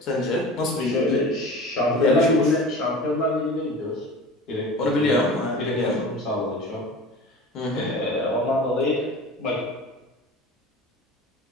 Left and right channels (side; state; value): both; normal; correlation 0.36